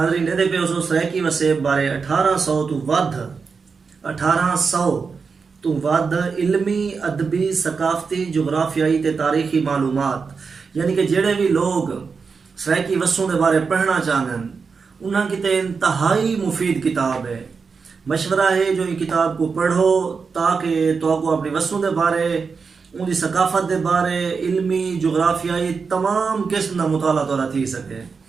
دے پہ اسو سرائکی وسیب بارے 1800 تو ود علمی ادبی ثقافتی جغرافیائی تے تاریخی معلومات یعنی کہ جڑے بھی لوگ سرائکی وسوں دے بارے پڑھنا چاہن انہاں کی تے انتہائی مفید کتاب ہے. مشورہ ہے جو یہ کتاب کو پڑھو تاکہ تو کو اپنی وسوں دے بارے ان دی ثقافت دے بارے علمی جغرافیائی تمام قسم دا مطالعہ توڑا تھی سکے.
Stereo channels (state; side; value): quieter; left; 5.2 dB